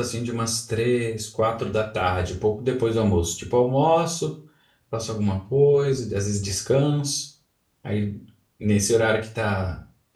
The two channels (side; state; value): both; identical; correlation 1.00